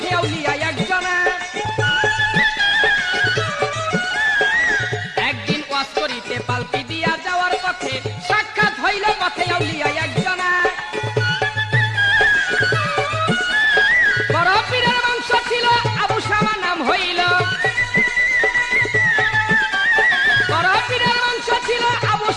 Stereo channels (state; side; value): identical; both; correlation 1.00